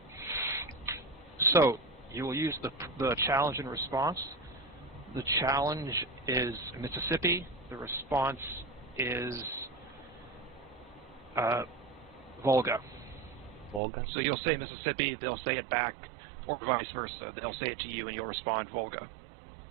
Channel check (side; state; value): left; drops out; at 13.8 s